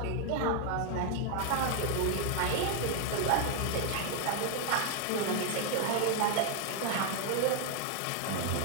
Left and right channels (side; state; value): both; different; correlation 0.01